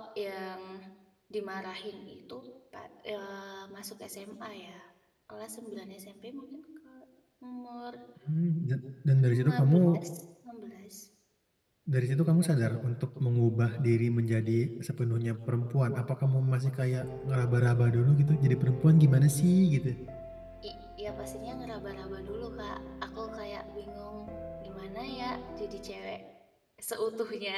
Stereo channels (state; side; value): identical; both; correlation 1.00